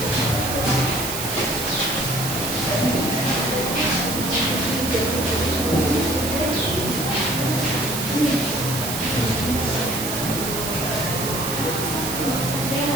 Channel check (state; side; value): noise; right; hiss, 4 dB below the sound